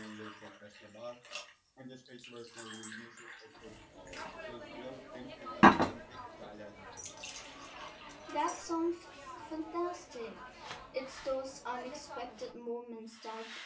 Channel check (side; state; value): both; identical; correlation 1.00